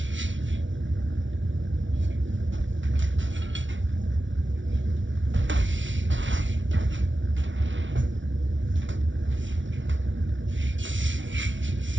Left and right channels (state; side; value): late; left; 0.56 ms